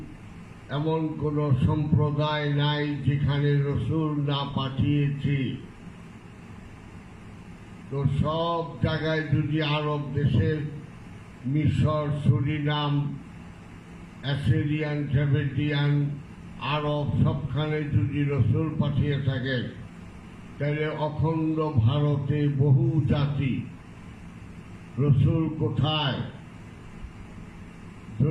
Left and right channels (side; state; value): both; identical; correlation 1.00